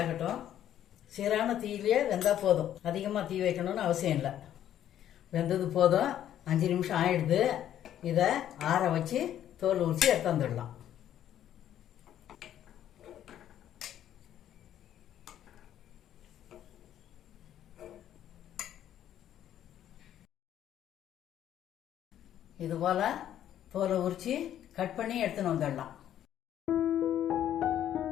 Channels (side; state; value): right; quieter; 11.1 dB